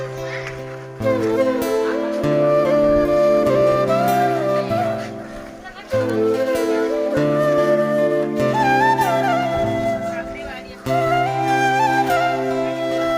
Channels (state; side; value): identical; both; correlation 1.00